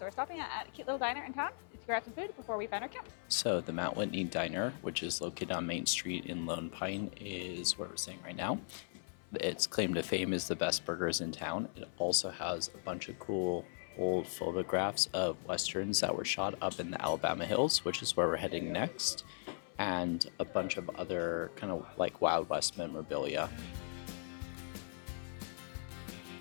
we're stopping at a cute little diner in town to grab some food before we find our camp. So the Mount Whitney Diner, which is located on Main Street in Lone Pine, is where we're staying right now. Its claim to fame is the best burgers in town. It also has a bunch of cool old photographs of Westerns that were shot up in the Alabama Hills, which is where we're heading next, and a bunch of other kind of like Wild West memorabilia.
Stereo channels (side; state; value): right; silent; 52 dB below the other